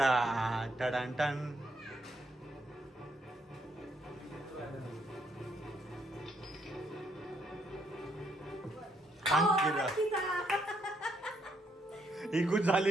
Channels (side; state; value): both; normal; correlation 0.74